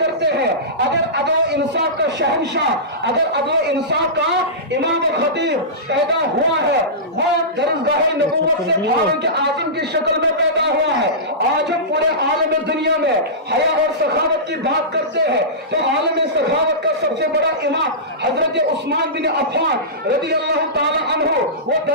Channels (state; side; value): normal; both; correlation -0.19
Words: ہیں. اگر عدل و انصاف کا شہنشاہ، اگر عدل و انصاف کا امام و خطیب پیدا ہوا ہے وہ درسگاہ نبوت سے فاروق اعظم کی شکل میں پیدا ہوا ہے. آج ہم پورے عالم دنیا میں حیا اور سخاوت کی بات کرتے ہیں تو عالم سخاوت کا سب سے بڑا امام حضرت عثمان بن عفان رضی اللہ تعالی عنہ وہ